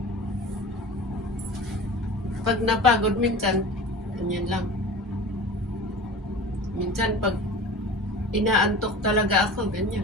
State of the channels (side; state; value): both; normal; correlation 0.37